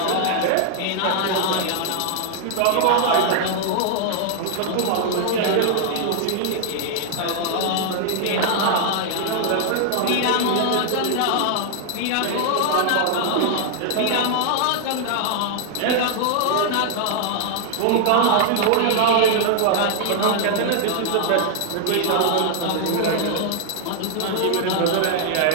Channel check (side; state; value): both; different; correlation 0.00